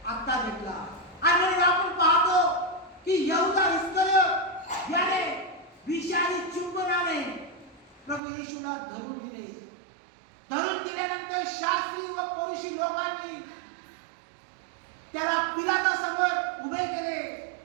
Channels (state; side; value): drops out; left; at 8.2 s